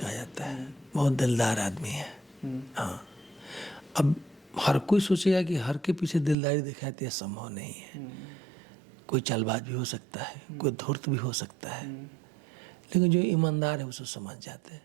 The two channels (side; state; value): left; drops out; at 6.4 s